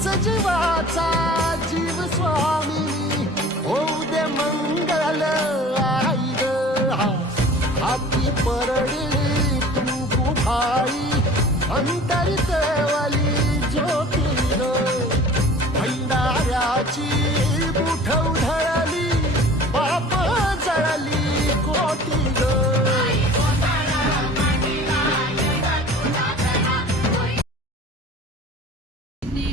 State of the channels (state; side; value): normal; both; correlation 0.44